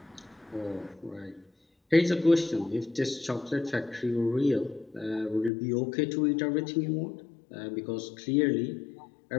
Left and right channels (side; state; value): right; drops out; at 5.5 s